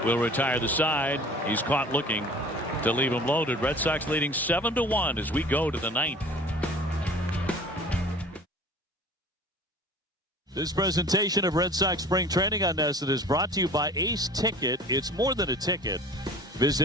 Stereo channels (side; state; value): both; normal; correlation 0.44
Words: will retire the side. He's caught looking to leave him loaded. Red Sox leading 7-1 as we go to the ninth. This presentation of Red Sox Spring Training on Nesson is brought to you by Ace Ticket. It's more than a ticket.